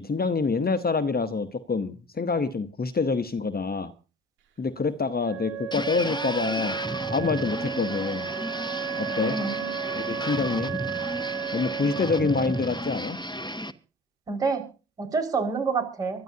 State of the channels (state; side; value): normal; both; correlation 0.41